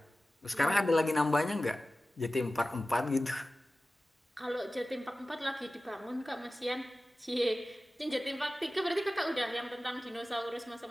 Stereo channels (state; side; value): normal; both; correlation 0.96